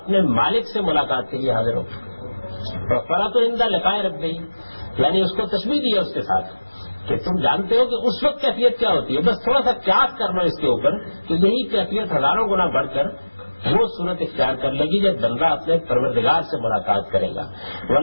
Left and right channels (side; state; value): both; inverted; correlation -1.00